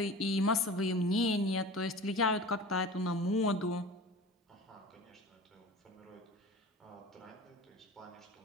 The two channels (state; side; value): normal; both; correlation 0.37